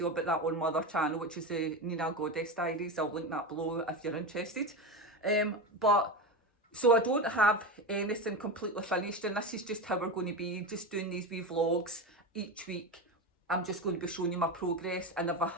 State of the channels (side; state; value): both; normal; correlation 0.20